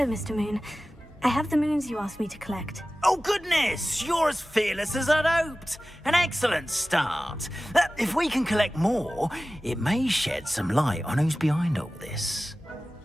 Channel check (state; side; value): normal; both; correlation 0.96